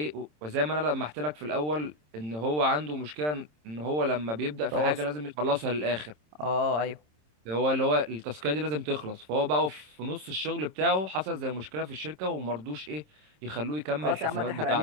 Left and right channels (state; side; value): late; left; 27 ms